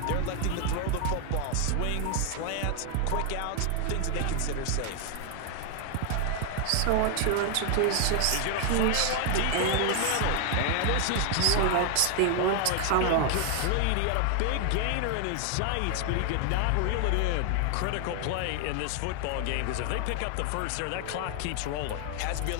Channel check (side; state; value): both; different; correlation 0.00